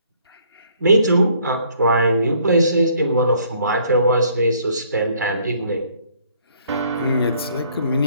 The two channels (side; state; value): both; inverted; correlation -0.63